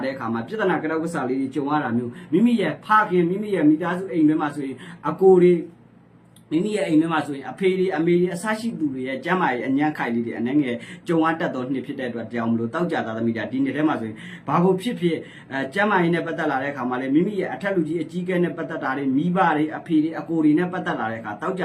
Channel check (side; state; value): both; identical; correlation 1.00